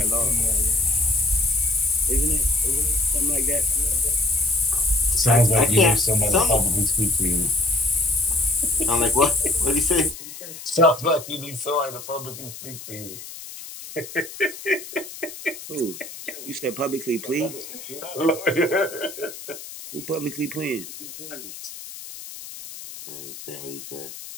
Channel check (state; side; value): noise; left; hiss, 13 dB below the sound